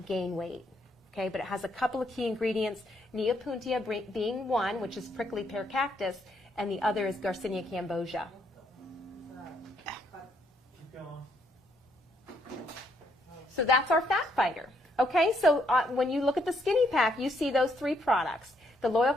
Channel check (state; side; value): normal; both; correlation 0.72